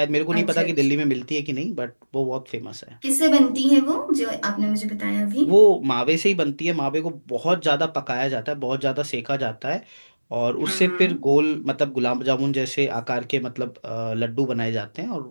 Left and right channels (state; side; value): inverted; both; correlation -1.00